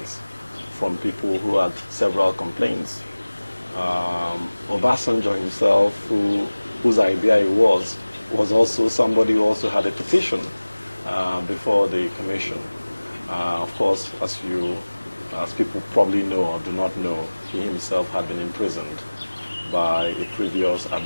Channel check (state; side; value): inverted; both; correlation -1.00